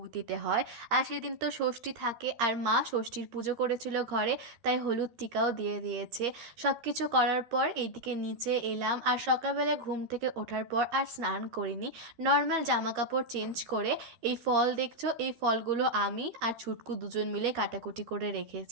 দিতে হয়, আর সেদিন তো ষষ্ঠী থাকে, আর মা ষষ্ঠীর পুজো করেছিল ঘরে, তাই হলুদ টিকাও দিয়ে দিয়েছে। সব কিছু করার পর এইদিকে নিচে এলাম, আর সকালবেলায় ঘুম থেকে ওঠার পর আর স্নান করিনি, নর্মাল জামা কাপড় চেঞ্জ করে এই ফল দেখছো, এই ফলগুলো আমি আর ছুটকু 2 জন মিলে কাটাকুটি করে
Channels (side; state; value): left; late; 13 ms